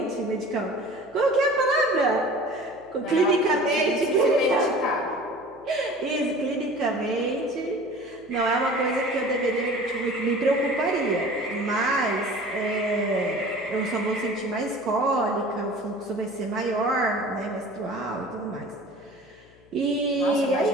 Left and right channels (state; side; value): noise; left; hum, 29 dB below the sound